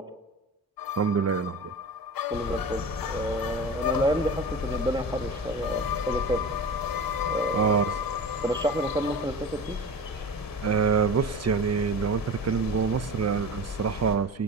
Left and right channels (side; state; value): both; normal; correlation 0.32